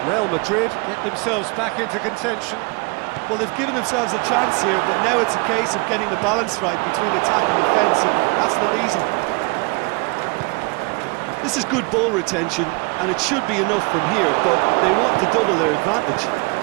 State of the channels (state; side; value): quieter; left; 28.8 dB